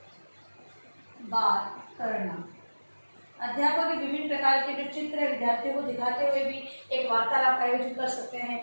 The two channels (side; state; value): both; inverted; correlation -1.00